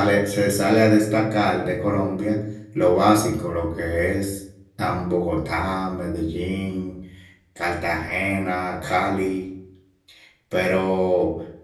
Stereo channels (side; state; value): both; identical; correlation 1.00